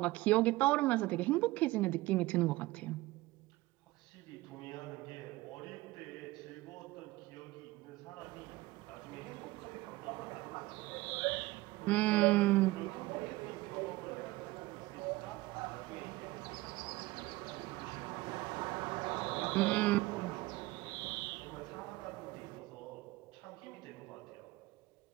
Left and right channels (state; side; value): quieter; left; 19.3 dB